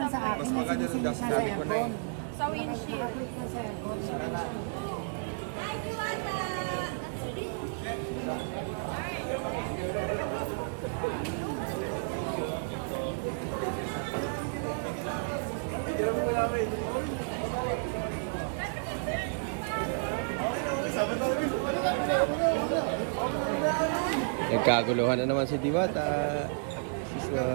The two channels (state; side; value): silent; left; digital silence